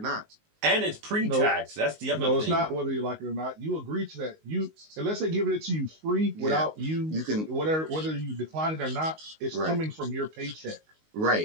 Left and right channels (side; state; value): left; late; 19 ms